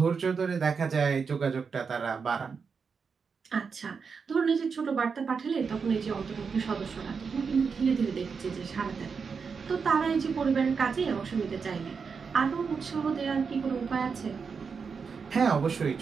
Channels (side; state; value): left; quieter; 5.6 dB